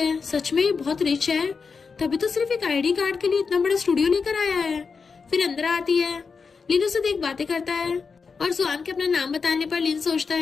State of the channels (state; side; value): quieter; right; 5.2 dB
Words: सच में ये बहुत रिच है, तभी तो सिर्फ एक आईडी कार्ड के लिए इतना बड़ा स्टूडियो लेकर आया है। फिर अंदर आती है। लिन उसे देख बातें करता है और जुआन के अपना नाम बताने पर लिन सोचता